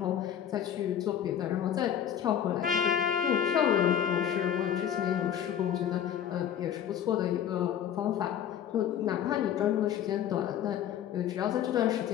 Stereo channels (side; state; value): right; quieter; 9.6 dB